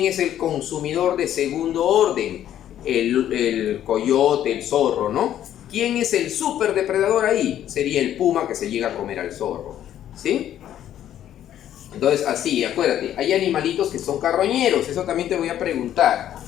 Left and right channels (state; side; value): quieter; right; 11.2 dB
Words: es el consumidor de segundo orden? El coyote, el zorro, ¿no? ¿Quién es el superdepredador ahí? Sería el puma que se llega a comer al zorro, ¿sí? Entonces así, acuérdate, hay animalitos que son carroñeros, eso también te voy a preguntar.